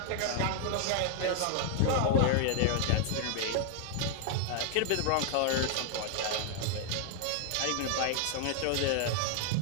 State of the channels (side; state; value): both; different; correlation 0.00